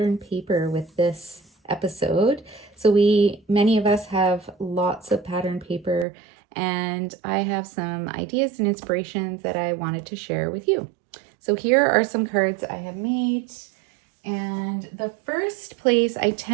paper with this episode. So many of us have lots of pattern paper, and I have some ideas and inspirations that I wanted to share with you. So here are some cards I have made. And the first place I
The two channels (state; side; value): drops out; left; at 6.1 s